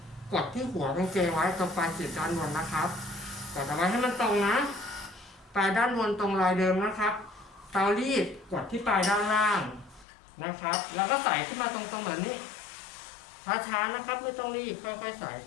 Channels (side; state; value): right; drops out; at 10.1 s